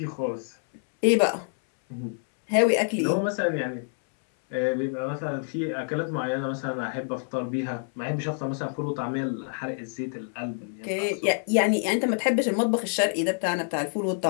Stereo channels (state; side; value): silent; right; 60 dB below the other